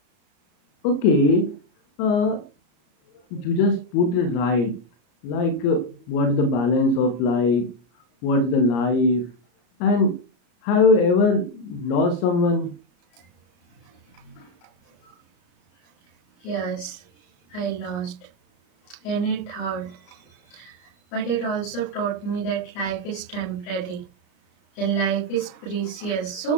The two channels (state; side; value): late; right; 33 ms